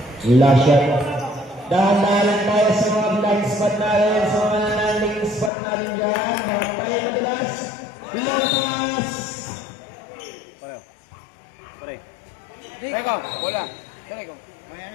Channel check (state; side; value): drops out; right; at 5.5 s